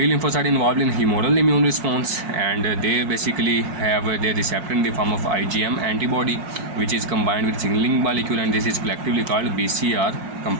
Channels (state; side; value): late; left; 5.6 ms